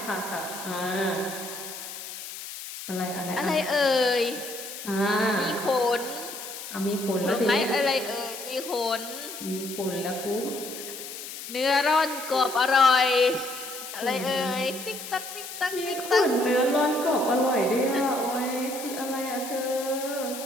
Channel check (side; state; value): left; noise; hiss, 10 dB below the sound